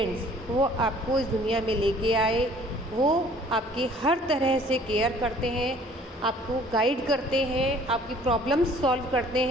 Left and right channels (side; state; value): both; normal; correlation 0.54